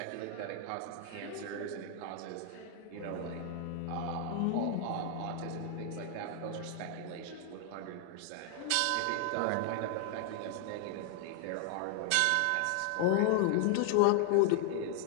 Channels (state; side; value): different; both; correlation 0.00